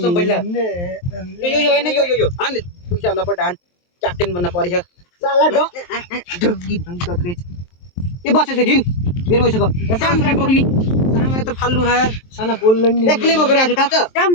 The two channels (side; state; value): right; late; 23 ms